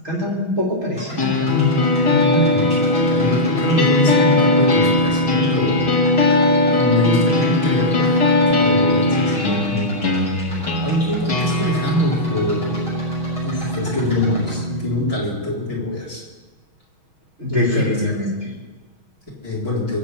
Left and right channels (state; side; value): late; left; 6.3 ms